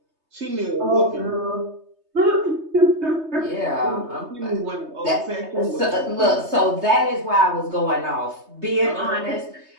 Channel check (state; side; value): late; left; 3.2 ms